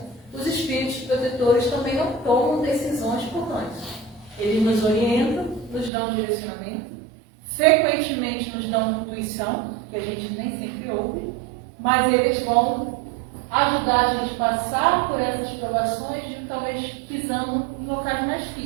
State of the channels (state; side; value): drops out; left; at 5.9 s